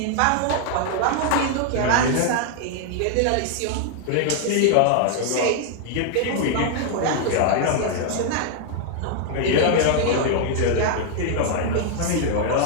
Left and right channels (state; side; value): different; both; correlation 0.00